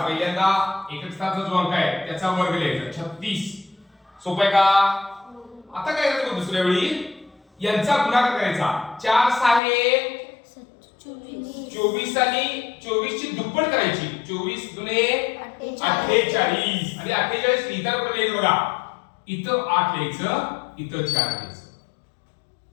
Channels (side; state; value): right; drops out; at 9.6 s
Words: पहिल्यांदा एकक स्थानाचा जो अंक आहे त्याचा वर्ग लिहायचा 36. सोपं आहे का? आता काय करायचं दुसऱ्या वेळी यांचा गुणाकार करायचा. 4 6 24 आणि 24 ची दुप्पट करायची. 24 दुने 48 आणि 48 लिहिताना कुठे लिहायचं बघा. इथं 8 लिहायचं, इथं 4 लिहायचं.